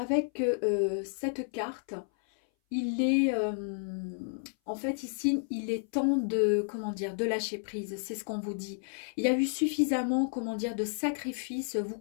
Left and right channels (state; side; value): silent; right; 57 dB below the other